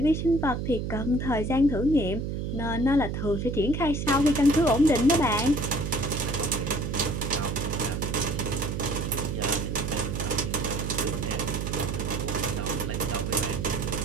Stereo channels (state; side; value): noise; right; hum, 3 dB below the sound